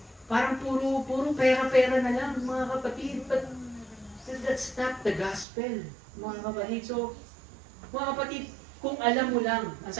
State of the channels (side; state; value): left; drops out; at 5.5 s